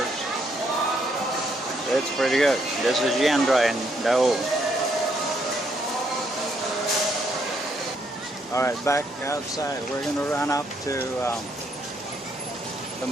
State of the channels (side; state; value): both; normal; correlation 0.73